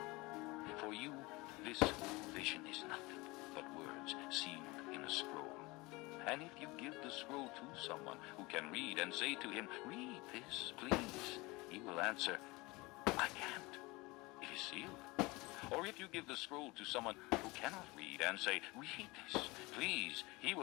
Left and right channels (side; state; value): right; quieter; 23.4 dB